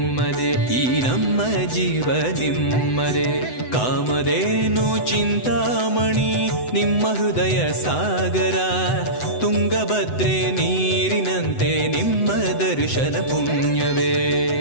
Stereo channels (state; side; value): late; right; 7.9 ms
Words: ಈ ನಮ್ಮ ಜೀವ ನಿಮ್ಮದೇ ಕಾಮಧೇನು ಚಿಂತಾಮಣಿ ನಿಮ್ಮ ಹೃದಯ ಸಾಗರ ತುಂಗಭದ್ರೆ ನೀರಿನಂತೆ ನಿಮ್ಮ ದರ್ಶನ ಪುಣ್ಯವೇ